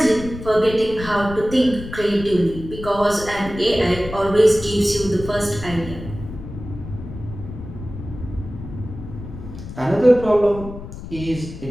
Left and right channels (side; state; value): left; noise; rumble, 11 dB below the sound